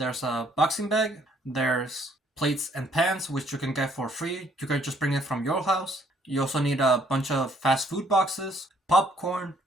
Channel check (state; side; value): normal; both; correlation 0.65